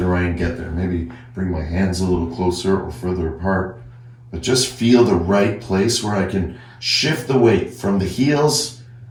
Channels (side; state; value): both; identical; correlation 1.00